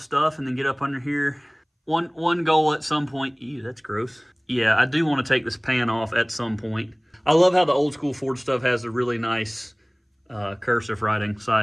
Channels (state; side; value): identical; both; correlation 1.00